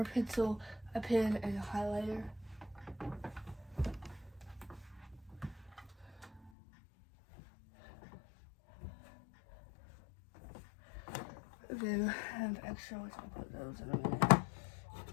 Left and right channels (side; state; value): right; drops out; at 6.5 s